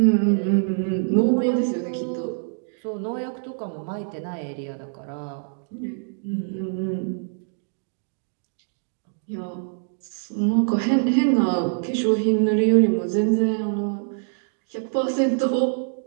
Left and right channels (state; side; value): silent; left; digital silence